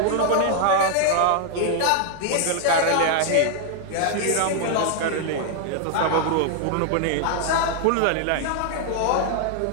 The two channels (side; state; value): both; different; correlation 0.00